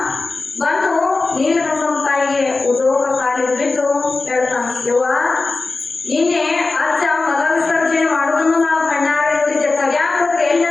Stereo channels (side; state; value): right; quieter; 3.6 dB